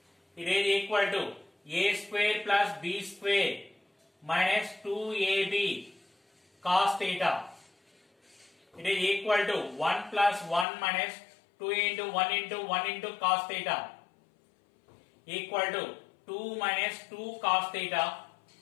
It is equal to A square plus B square minus 2AB cos theta. It is equal to 1 plus 1 minus 2 into 1 into 1 into cos theta equal to 2 minus 2 cos theta.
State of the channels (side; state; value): right; drops out; at 10.7 s